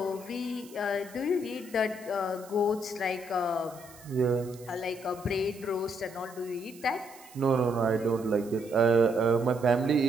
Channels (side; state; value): right; noise; hiss, 22 dB below the sound